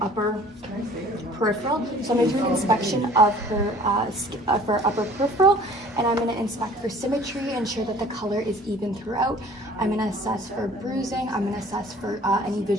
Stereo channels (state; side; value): normal; both; correlation 0.50